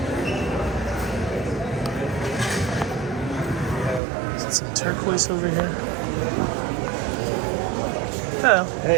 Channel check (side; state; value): left; drops out; at 4.0 s